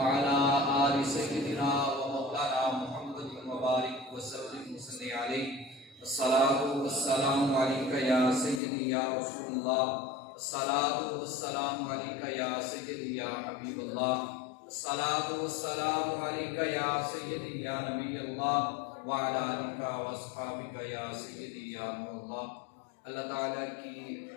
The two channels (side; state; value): right; drops out; at 8.6 s